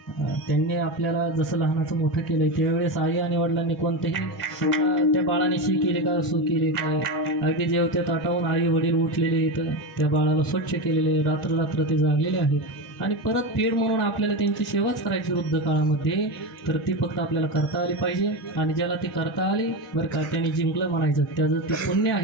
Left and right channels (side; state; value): both; normal; correlation 0.18